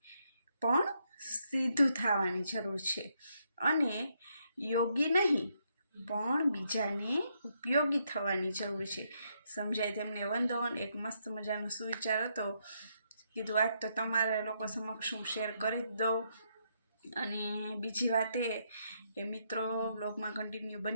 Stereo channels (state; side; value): inverted; both; correlation -0.77